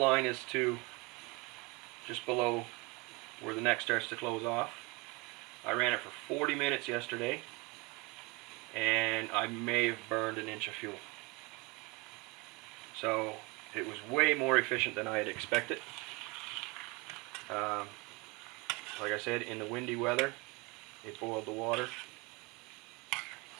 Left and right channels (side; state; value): left; quieter; 25.9 dB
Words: is to just below where the neck starts to close off. I ran it for 40 minutes yesterday, and I may have burned an inch of fuel. So it was way more efficient than I had expected. Like I said, in the windy weather, it boiled the water.